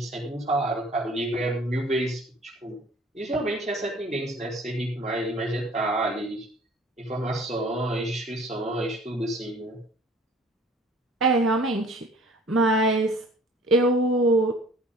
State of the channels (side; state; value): both; normal; correlation 0.50